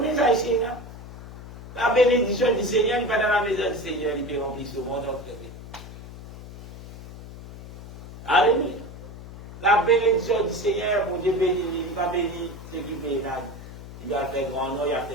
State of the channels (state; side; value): noise; left; hum, 14 dB below the sound